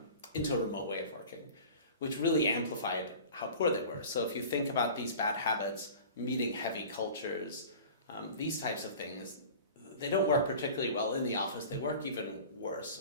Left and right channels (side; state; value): both; inverted; correlation -0.40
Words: into a remote way of working, which really amplified how poor they were. So if you think about these bad habits, meeting-heavy cultures, these types of things, they don't work particularly well in the office. They work even